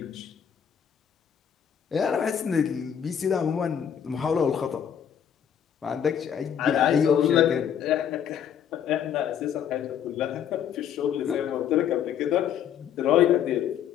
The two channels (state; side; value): quieter; right; 8.7 dB